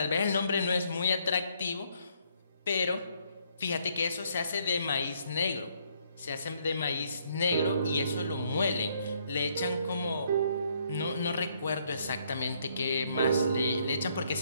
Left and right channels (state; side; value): inverted; both; correlation -0.69